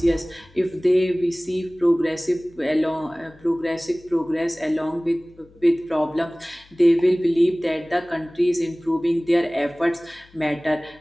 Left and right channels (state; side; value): noise; left; hum, 28 dB below the sound